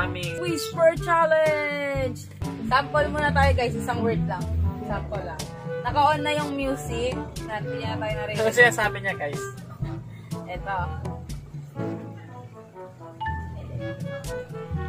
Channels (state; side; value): identical; both; correlation 1.00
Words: aming Whisper Challenge! Sample muna tayo guys, isang word lang. Sample lang. Naka-on na yung music. Hindi na tayo narinig. Ano siya sabi niya guys? Eto.